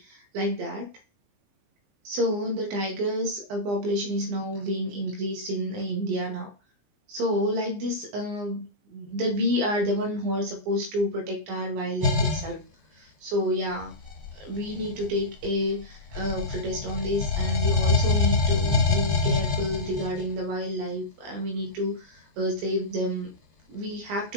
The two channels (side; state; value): left; late; 20 ms